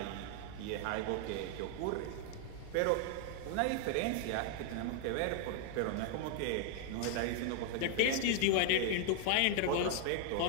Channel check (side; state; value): both; different; correlation 0.00